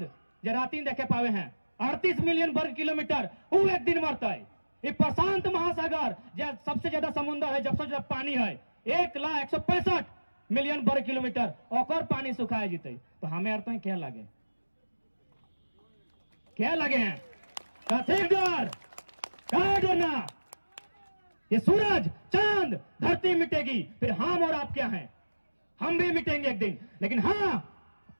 जो राती देखे पावे हैं 38 मिलियन वर्ग किलोमीटर, वो एक दिन मरता है। ये प्रशांत महासागर जो सबसे ज्यादा समुद्र है, सबसे ज्यादा पानी है, 1,165 मिलियन वर्ग किलोमीटर, और पानी सुखाए जीते। तो हमें अर्थ क्या लगे, क्या लगे हैं, क्या डरना, ये सूरज, चांद, धरती मिटेगी, फिर हम और आप क्या हैं, हम भी मिटेंगे एक दिन। लेकिन हाँ,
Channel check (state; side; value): inverted; both; correlation -1.00